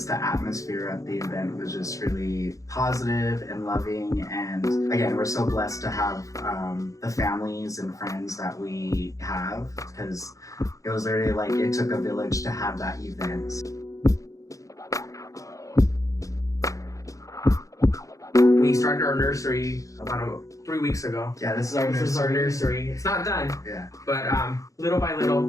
the atmosphere at the event was just really positive and loving. And again, we're so blessed to have the families and friends that we have, because it was literally it took a village to have that event. We started our nursery about 3 weeks ago. Yeah, this is our nursery. This is our nursery. It's not done. Yeah. But little by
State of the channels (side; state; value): right; late; 0.16 ms